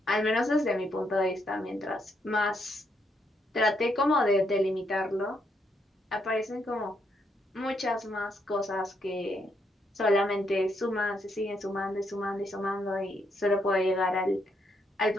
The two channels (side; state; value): both; normal; correlation 0.76